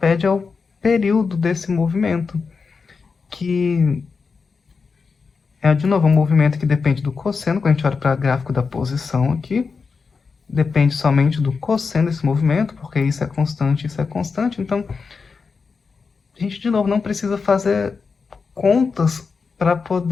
é o período desse movimento, que é, de novo, um movimento que depende do cosseno. Quando a gente olha para o gráfico da posição aqui, depende somente do cosseno desse movimento, porque isso é constante, isso é constante. Então, a gente, de novo, não precisa fazer contas para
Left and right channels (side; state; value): right; quieter; 5.0 dB